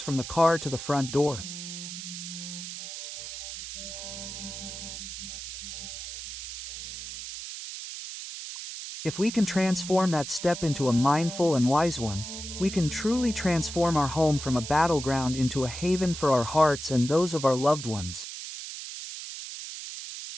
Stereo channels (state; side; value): noise; right; hiss, 9 dB below the sound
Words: from the car to the front door. If we can transform that step into a mindful and wise one, we can truly transform our home from a battleground into a haven for our hearts and those of our loved ones.